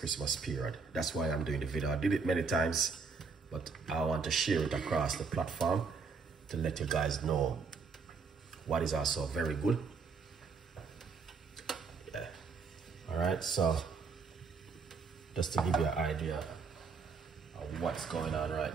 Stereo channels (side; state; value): left; quieter; 5.0 dB